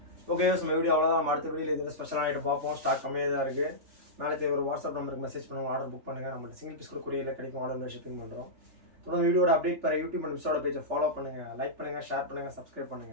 Okay, நம்ம வீடியோ அவ்வளோதான். நம்ம அடுத்த வீடியோவில் இது ஸ்பெஷலான ஐட்டம் பார்ப்போம். ஸ்டாக் கம்மியாக தான் இருக்குது. மேலே ஒரு வாட்ஸ்அப் நம்பருக்கு மெசேஜ் பண்ணுவோம், ஆர்டர் புக் பண்ணுங்கள். நம்ம சிங்கிள் பீஸ் கூட கொரியரில் கிடைக்கும். ஆர்டர் ஷிப்பிங் பண்ணுறோம். தொடர்ந்து வீடியோட அப்டேட் பெற யூடியூப் அண்ட் மிஸ்ஸோட பேஜை ஃபாலோ பண்ணுங்கள், லைக் பண்ணுங்கள், ஷேர் பண்ணுங்கள், சப்ஸ்கிரைப்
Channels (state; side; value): late; left; 3.4 ms